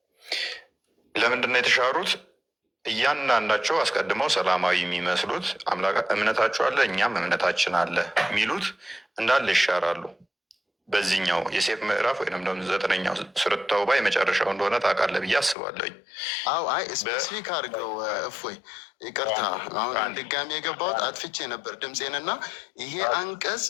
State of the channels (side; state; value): right; drops out; at 15.6 s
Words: ለምንድን ነው የተሻሩት? እያንዳንዳቸው አስቀድመው ሰላማዊ የሚመስሉት እምነታቸው አለ እኛም እምነታችን አለ የሚሉት እንዳለ ይሻራሉ። በዚህኛው የሴፍ ምዕራፍ ወይም ደግሞ 9ኛው ሱረቱ ተውባ የመጨረሻው እንደሆነ ታውቃለህ ብዬ አስባለሁኝ። አዎ አይ ስፔሲፊክ አድርገው እፎይ፣ ይቅርታ አሁን ድጋሚ የገባሁት አጥፍቼ ነበር ድምፄንና ይሄ አንቀጽ